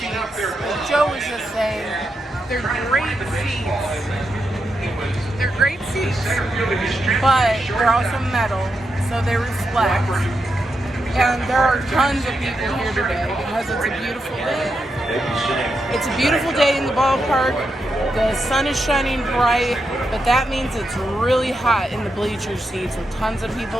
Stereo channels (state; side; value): normal; both; correlation 0.85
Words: Like Joe was just saying, they're great seats. They're great seats, but they're also metal, so they reflect. And there are tons of people here today because it's a beautiful day. It's a beautiful day in the ballpark. The sun is shining bright, but that means it's really hot in the bleacher seats with tons of